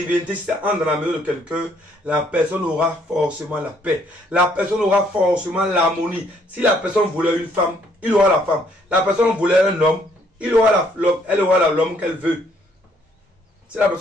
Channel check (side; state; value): both; normal; correlation 0.67